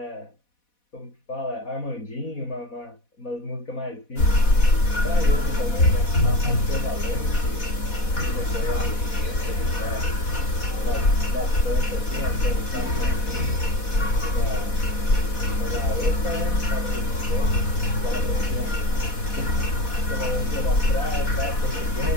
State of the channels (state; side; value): late; right; 4.1 ms